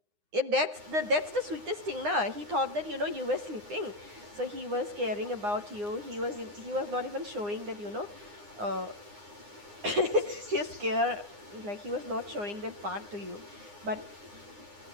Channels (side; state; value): left; late; 9.7 ms